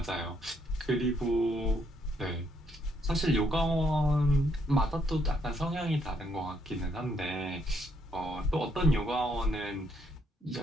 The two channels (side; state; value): both; normal; correlation 0.72